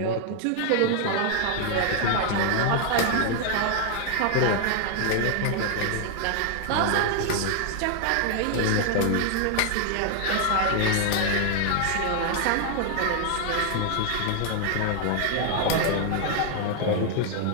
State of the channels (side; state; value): both; different; correlation 0.00